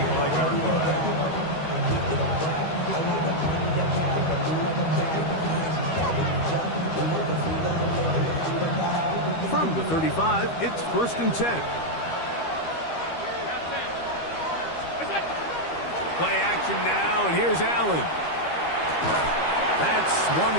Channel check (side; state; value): right; late; 13 ms